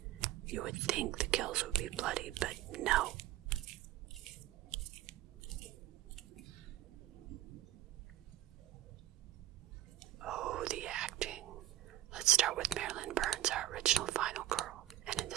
You would think the kills would be bloody, but no. Oh, the acting. Let's start with Marilyn Burns, our original final girl, and in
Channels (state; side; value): quieter; left; 13.3 dB